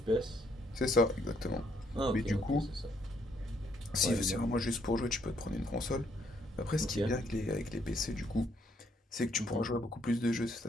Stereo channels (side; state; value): both; normal; correlation 0.70